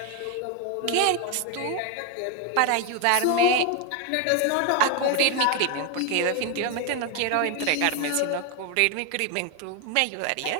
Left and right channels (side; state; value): both; different; correlation 0.01